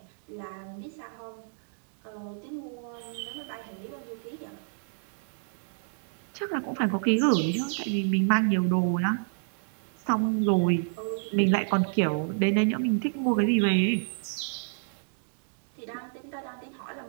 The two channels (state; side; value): silent; left; digital silence